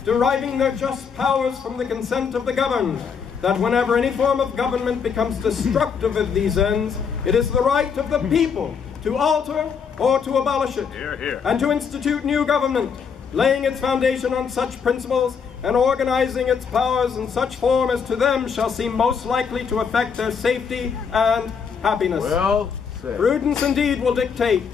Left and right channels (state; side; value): quieter; right; 6.4 dB